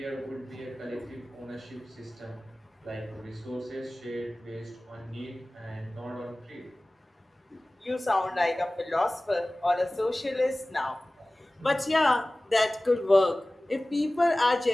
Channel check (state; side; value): normal; both; correlation 0.98